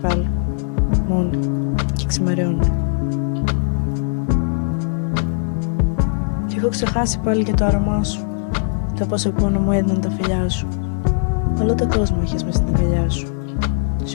Μόνοι. Και ξημερώνει. Κι έχω ξεχάσει πάλι και το άρωμά σου. Το πόσο πόνο μου έδιναν τα φιλιά σου. Όλο τον κόσμο είχες μες στην αγκαλιά σου.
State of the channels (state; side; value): silent; right; digital silence